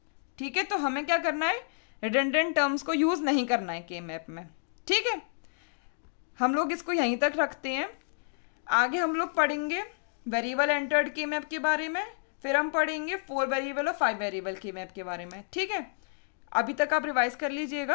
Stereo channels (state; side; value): silent; right; digital silence